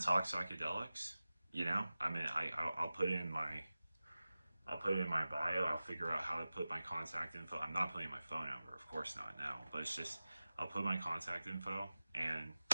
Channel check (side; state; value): both; inverted; correlation -0.96